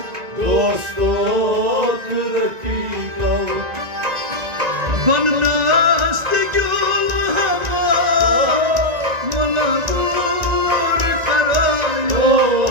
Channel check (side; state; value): left; late; 1.9 ms